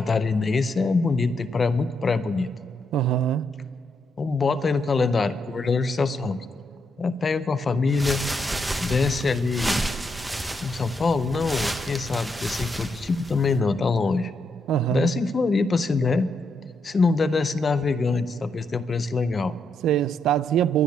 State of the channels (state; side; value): normal; both; correlation 0.79